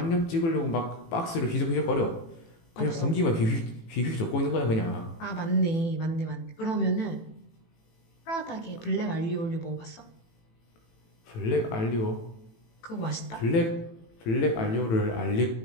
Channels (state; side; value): late; right; 18 ms